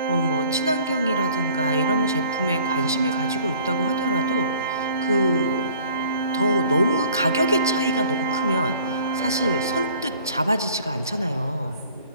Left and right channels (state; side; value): inverted; both; correlation -0.52